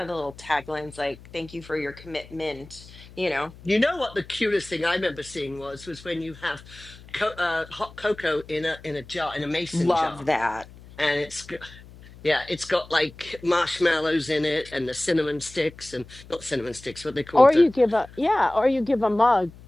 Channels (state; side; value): noise; left; hum, 20 dB below the sound